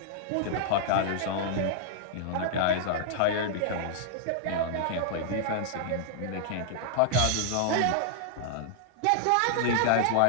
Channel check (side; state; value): both; different; correlation -0.01